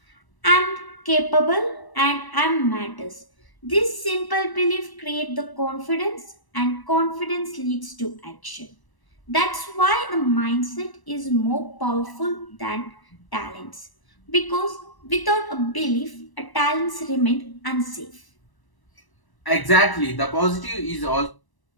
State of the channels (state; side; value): late; right; 1.0 ms